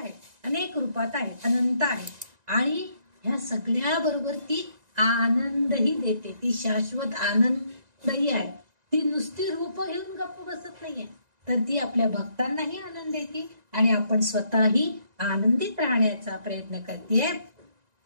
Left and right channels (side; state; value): left; late; 1.9 ms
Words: अनेक रूपात आहे, अनंत आहे आणि ह्या सगळ्या बरोबर ती आनंदही देते. ती शाश्वत आनंदही आहे. ती नुसती रूप घेऊन गप्प बसत नाहीये तर ती आपल्या भक्तांनाही आनंद देते आणि आपण स्वतःही आनंदित राहण्याचा प्रयत्न करते.